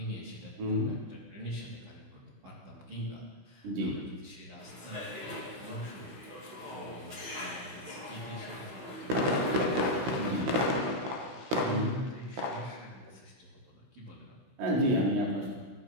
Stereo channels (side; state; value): left; late; 16 ms